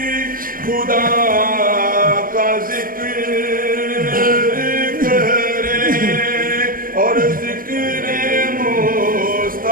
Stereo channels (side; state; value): left; late; 0.41 ms